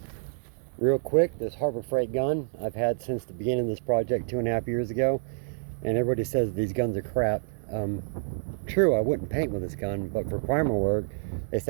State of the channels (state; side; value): silent; left; 59 dB below the other